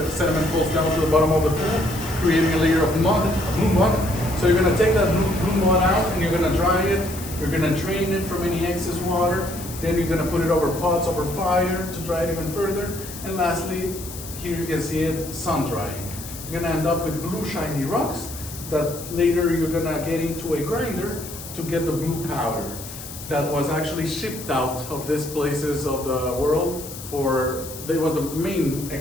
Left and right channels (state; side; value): noise; left; hiss, 12 dB below the sound